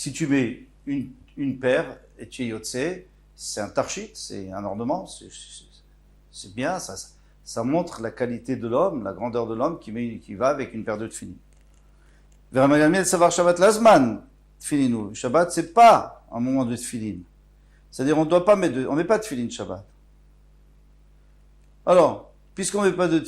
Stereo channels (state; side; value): identical; both; correlation 1.00